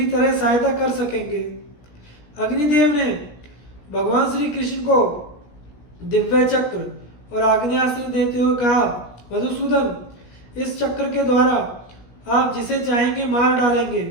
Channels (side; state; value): right; late; 17 ms